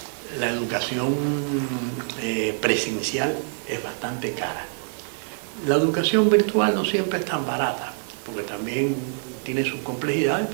la educación presencial es bastante cara. La educación virtual no siempre es tan barata, porque también tiene sus complejidades,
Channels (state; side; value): silent; left; 58 dB below the other